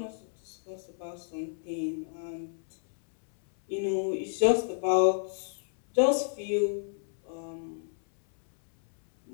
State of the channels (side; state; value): right; silent; 58 dB below the other